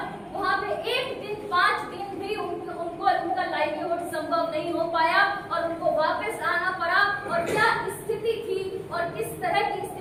वहाँ पे एक दिन 5 दिन भी उनका लाइवलीहुड संभव नहीं हो पाया और उनको वापस आना पड़ा। और क्या स्थिति थी और किस तरह की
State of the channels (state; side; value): identical; both; correlation 1.00